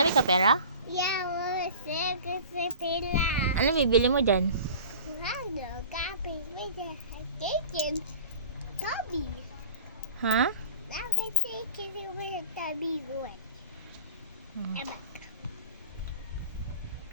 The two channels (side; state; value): both; inverted; correlation -0.39